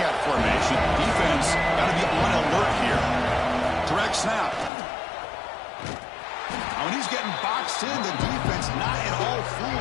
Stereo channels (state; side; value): drops out; right; at 4.7 s